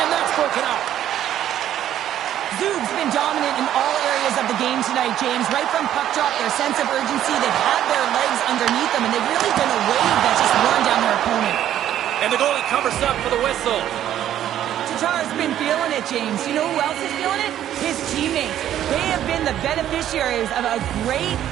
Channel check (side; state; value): left; quieter; 11.4 dB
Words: And that's broken up. Zug's been dominant in all areas of the game tonight, James. Right from puck drop, their sense of urgency, they've had their legs underneath them, and they've really been a wave that's just worn down their opponent. And the goalie covers up for the whistle. Tatar's been feeling it, James. You know who else is feeling it? His teammates. They have been the beneficiaries of a great